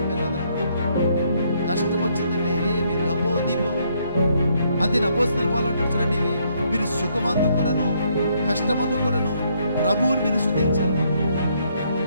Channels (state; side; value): inverted; both; correlation -0.71